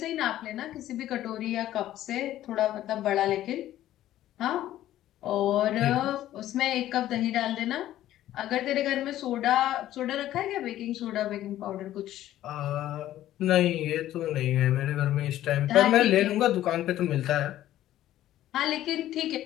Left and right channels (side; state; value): right; quieter; 13.4 dB